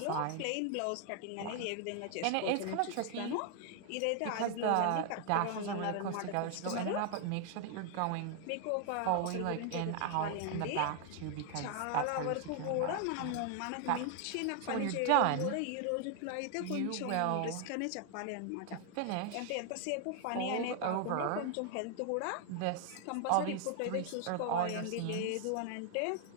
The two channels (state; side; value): different; both; correlation 0.00